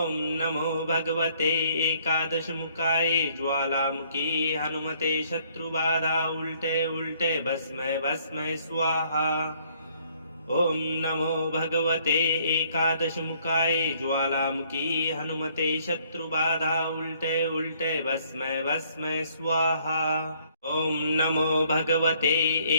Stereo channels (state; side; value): inverted; both; correlation -0.64